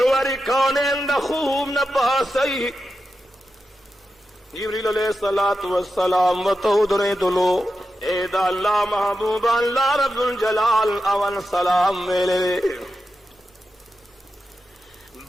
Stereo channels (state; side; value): normal; both; correlation 0.90